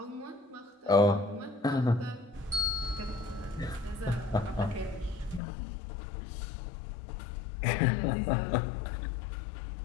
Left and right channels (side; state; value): right; drops out; at 5.4 s